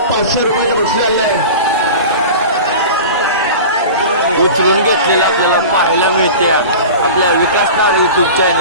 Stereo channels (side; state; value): both; inverted; correlation -0.34